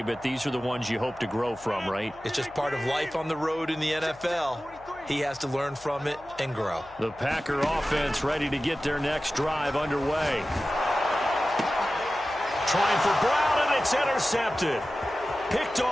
but these are the ones you hope to grow from, right? It's just part of life on the road in the NFL. He has to learn from it and grow. The Packer offense ready to get their next drive underway. Trying for Brown, and it's intercepted. Picked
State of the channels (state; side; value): noise; left; hum, 25 dB below the sound